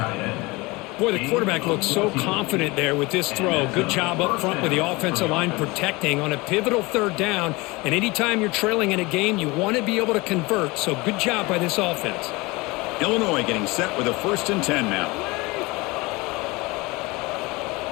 Boy, the quarterback looks so confident there with this throw. Good job up front with the offensive line protecting on a pivotal third down. And anytime you're trailing in a game, you want to be able to convert. So good job by this offense. Illinois getting set with a 1st and 10 now.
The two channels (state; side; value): quieter; right; 23.6 dB